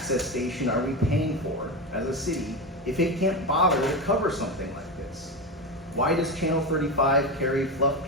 station are we paying for as a city if it can't bother to cover something like this? Why does Channel 35 carry fluff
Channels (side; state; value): both; normal; correlation 0.17